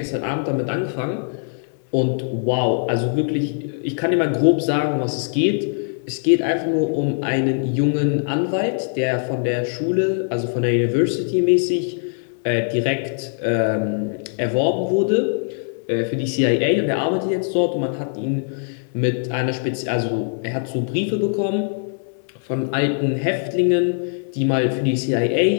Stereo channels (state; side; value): silent; right; 58 dB below the other